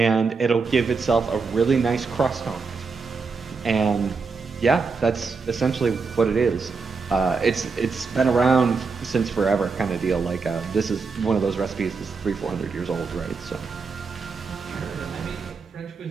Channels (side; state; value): left; quieter; 4.7 dB